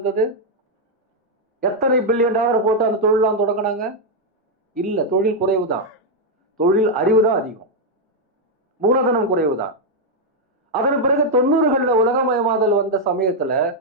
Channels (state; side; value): normal; both; correlation -0.01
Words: எத்தனை பில்லியன் டாலர் போட்டு அந்த தொழிலாம் தொடங்கினாங்க? இல்ல, தொழில் குறைவு தான். தொழில் அறிவு தான் அதிகம், மூலதனம் குறைவு தான். அதன் பிறகு 90களில் உலகமயமாதல் வந்த சமயத்துல